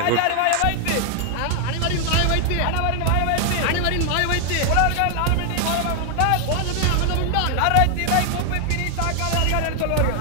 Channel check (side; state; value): both; different; correlation 0.00